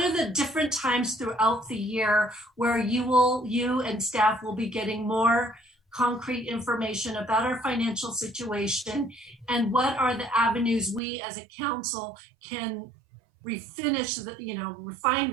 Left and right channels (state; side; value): drops out; left; at 11.0 s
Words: different times throughout the year where you and staff will be getting more concrete information about our financial situation, and what are the avenues we as a council can refine